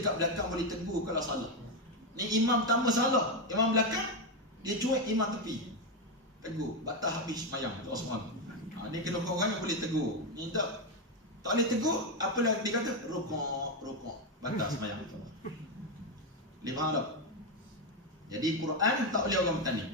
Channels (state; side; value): normal; both; correlation 0.08